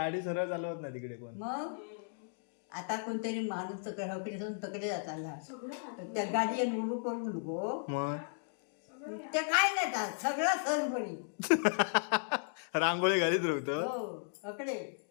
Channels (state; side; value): silent; right; digital silence